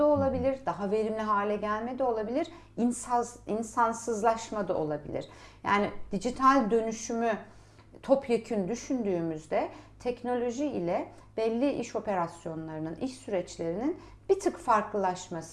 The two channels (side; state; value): both; identical; correlation 1.00